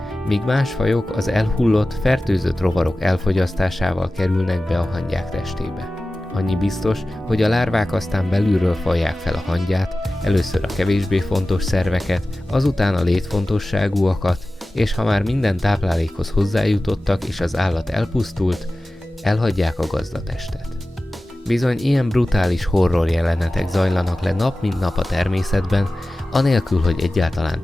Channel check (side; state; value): both; normal; correlation 0.96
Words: míg más fajok az elhullott, fertőzött rovarok elfogyasztásával kerülnek be a hangyák testébe. Annyi biztos, hogy a lárvák aztán belülről fajják fel a hangyát, először a kevésbé fontos szerveket, azután a létfontosságúakat, és ha már minden táplálékhoz hozzájutottak és az állat elpusztult, elhagyják a gazdatestet. Bizony ilyen brutális horror jelenetek zajlanak le nap mint nap a természetben, anélkül, hogy egyáltalán